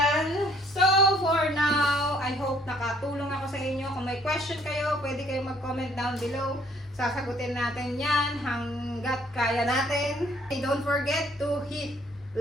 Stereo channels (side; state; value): both; normal; correlation 0.62